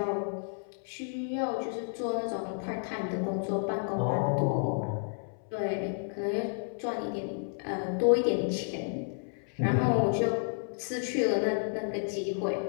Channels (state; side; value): silent; right; 57 dB below the other